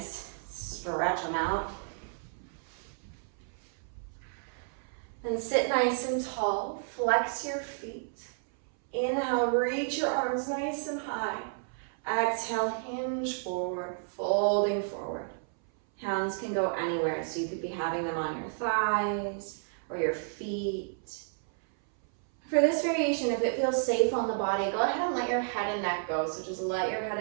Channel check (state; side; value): silent; left; 57 dB below the other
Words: stretch them out. Then sit nice and tall, flex your feet. Inhale, reach your arms nice and high. Exhale, hinge forward, folding forward. Hands can go anywhere, so you could be having them on your thighs or your feet. For this variation, if it feels safe on the body, go ahead and let your head and neck go. So just let your head